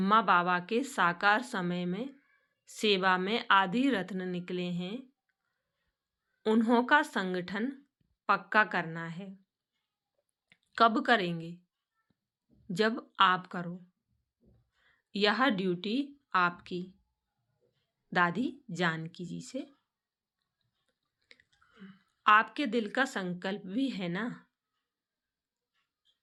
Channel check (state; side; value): identical; both; correlation 1.00